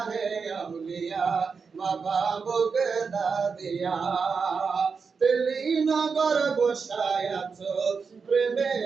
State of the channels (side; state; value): left; quieter; 5.3 dB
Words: আউলিয়া বাবা বগদাদিয়া দিল্লি নগর বসায় আছো